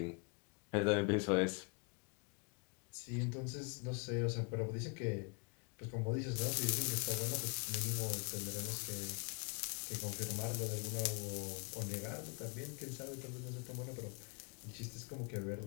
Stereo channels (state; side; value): quieter; right; 33.0 dB